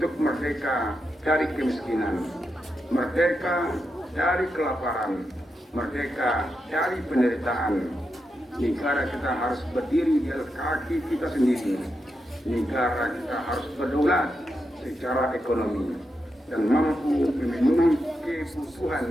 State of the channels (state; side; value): normal; both; correlation 0.86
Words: merdeka dari kemiskinan, merdeka dari kelaparan, merdeka dari penderitaan. Negara kita harus berdiri di atas kaki kita sendiri. Negara kita harus berdaulat secara ekonomi dan mampu memenuhi